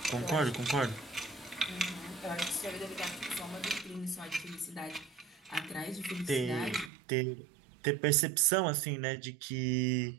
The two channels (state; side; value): drops out; left; at 6.9 s